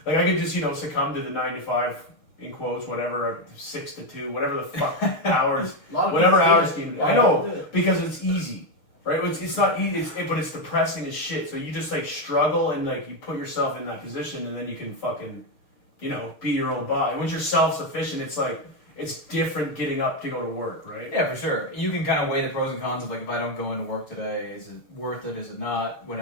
Like I could just, succumb to the 9 to 5 in quotes, whatever, 6 to 2, whatever the fuck hours, whatever hours scheme. I know, because it's easy, right? It's not easy, but it's depressing as shit. So you just like struggle and like you put yourself in that position, and then you can fucking, be your own boss. Once you're self-sufficient, it's like, it's different getting up to go to work, right? Yeah, for sure. You can kind of weigh the pros and cons of like, if I don't go into work today, is it worth it? Is it not?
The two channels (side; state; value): right; late; 6.5 ms